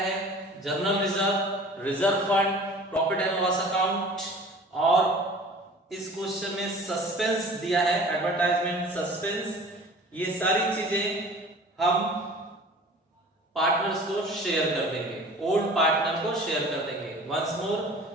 journal reserve, reserve fund, profit and loss account, और इस क्वेश्चन में सस्पेंस दिया है, एडवर्टाइजमेंट, सस्पेंस। ये सारी चीजें हम पार्टनर्स को शेयर कर देंगे, ओल्ड पार्टनर को शेयर कर देंगे। वंस मोर,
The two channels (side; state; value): both; normal; correlation 0.44